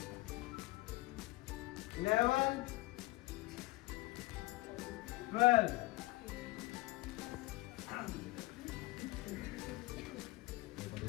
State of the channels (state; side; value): quieter; right; 20.6 dB